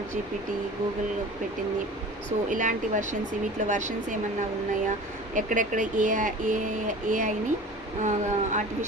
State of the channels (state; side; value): normal; both; correlation 0.39